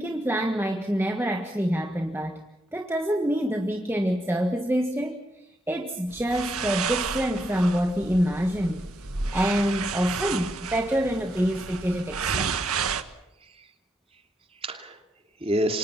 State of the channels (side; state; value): both; normal; correlation 0.80